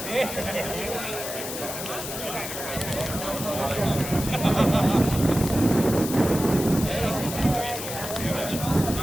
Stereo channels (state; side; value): noise; left; hiss, 7 dB below the sound